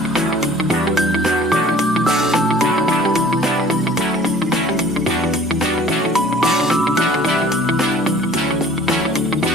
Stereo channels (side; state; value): both; normal; correlation 0.50